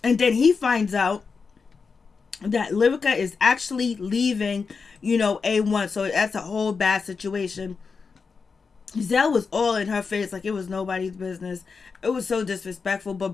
And then he finds out that Lyrica is actually leaving, A1. So that's a whole bad situation. Zell was all in her face like it was nobody's business. It was so disrespectful, but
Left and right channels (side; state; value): right; quieter; 5.1 dB